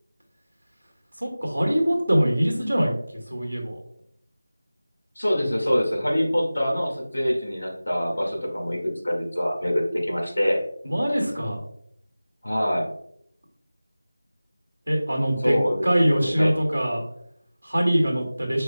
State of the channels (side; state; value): both; inverted; correlation -0.98